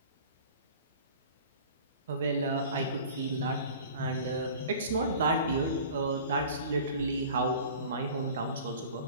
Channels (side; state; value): both; inverted; correlation -0.43